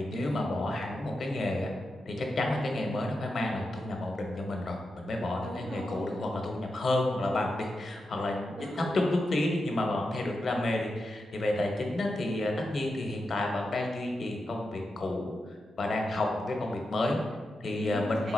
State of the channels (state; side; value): normal; both; correlation 0.88